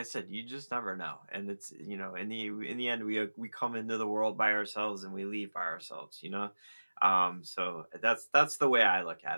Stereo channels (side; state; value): both; inverted; correlation -1.00